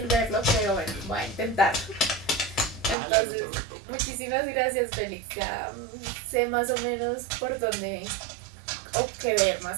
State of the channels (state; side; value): drops out; left; at 3.0 s